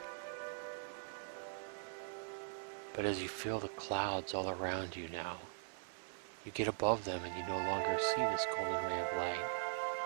But as you feel the clouds all around you now, you get above them and you no longer see this golden ray of light.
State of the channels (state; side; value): silent; left; 50 dB below the other